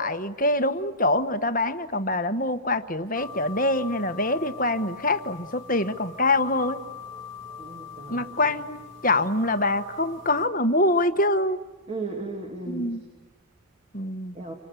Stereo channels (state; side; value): normal; both; correlation -0.16